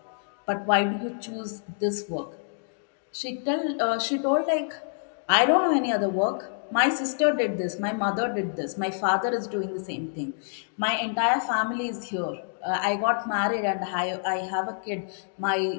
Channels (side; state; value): right; silent; digital silence